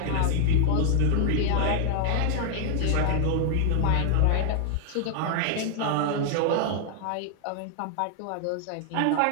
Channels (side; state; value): both; different; correlation 0.00